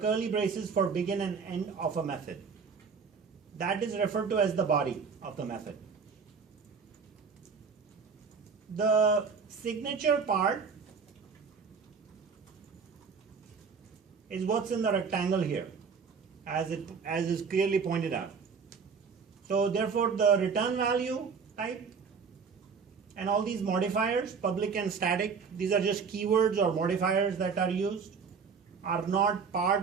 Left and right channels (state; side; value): quieter; left; 5.7 dB